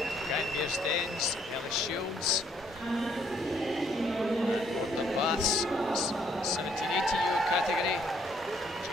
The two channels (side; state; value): both; normal; correlation 0.68